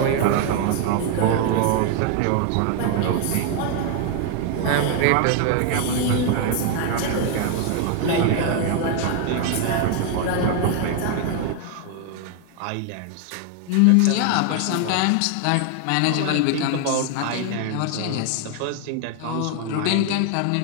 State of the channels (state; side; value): different; both; correlation 0.00